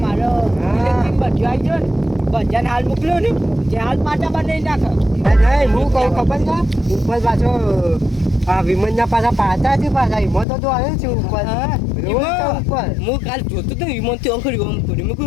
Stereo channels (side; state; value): right; drops out; at 10.5 s